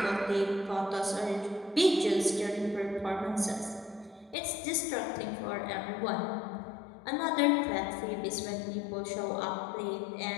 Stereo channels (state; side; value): drops out; right; at 4.4 s